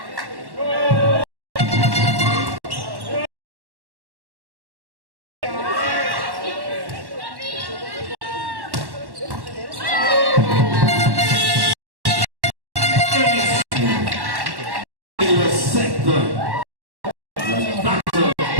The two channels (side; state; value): left; late; 1.1 ms